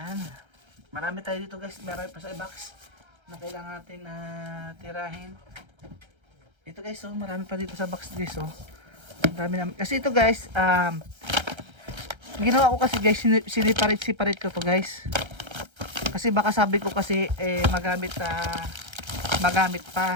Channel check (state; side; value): late; left; 1.3 ms